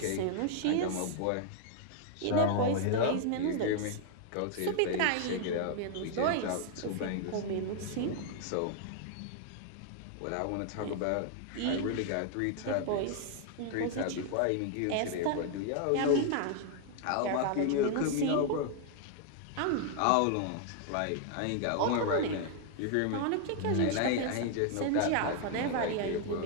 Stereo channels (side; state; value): both; different; correlation 0.00